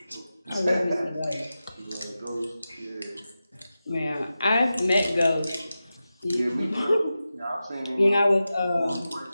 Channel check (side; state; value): both; inverted; correlation -0.93